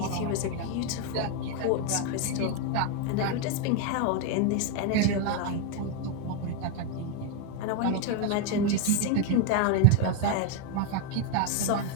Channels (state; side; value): different; both; correlation 0.01